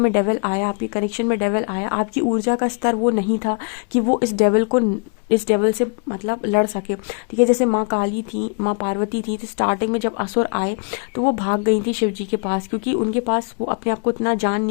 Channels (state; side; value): quieter; right; 38.0 dB